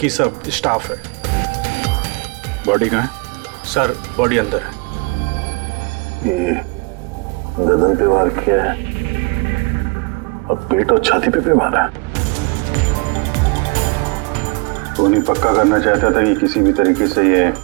सब स्टाफ है। बॉडी कहाँ है? सर बॉडी अंदर है। ये गर्दन पे वार किया है और पेट और छाती पे भी मारा है। वो नहीं पक्का करना चाहता था कि किसी भी तरीके से ये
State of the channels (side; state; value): left; quieter; 29.2 dB